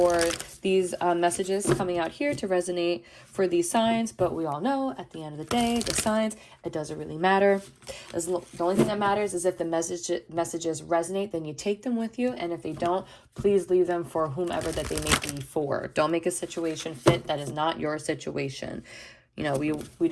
these messages coming out here to resonate for these signs. But we all know at the end of the day, the signs, it doesn't really matter. The only thing that matters is if the messages resonate, then you take them with you. And if they don't, please leave them for whomever that they may be for. Don't make a situation fit that is not your situation. You know, we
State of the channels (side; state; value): both; identical; correlation 1.00